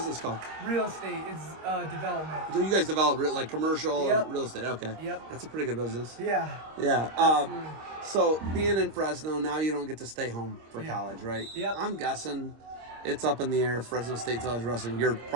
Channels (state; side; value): late; left; 26 ms